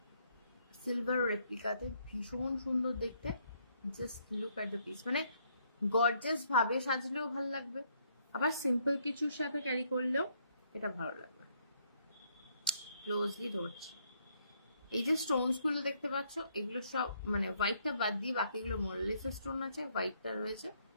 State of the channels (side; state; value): both; inverted; correlation -0.70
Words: সিলভার রেপ্লিকাতে, ভীষণ সুন্দর দেখতে। Just look at the piece. মানে গর্জাস ভাবে সাজলেও ভালো লাগবে, আবার সিম্পল কিছুর সাথে ক্যারি করলেও এটা ভালো লাগবে। ক্লোজলি ধরছি, এই যে স্টোনস গুলো দেখতে পাচ্ছ, এগুলো সব মানে হোয়াইটটা বাদ দিয়ে বাকিগুলো মোরলেস স্টোন আছে, হোয়াইটটা রয়েছে